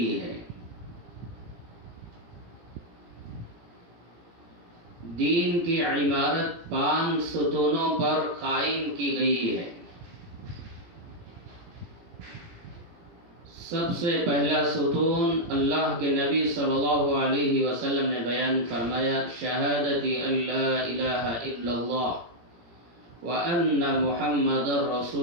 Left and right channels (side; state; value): left; late; 17 ms